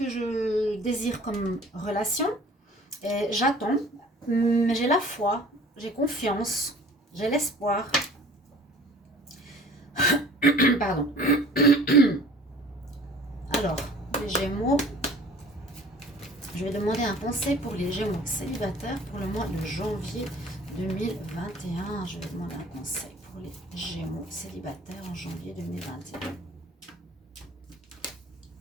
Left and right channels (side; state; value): both; normal; correlation 0.48